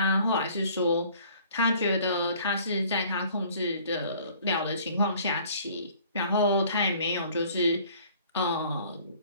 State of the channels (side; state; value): both; inverted; correlation -0.54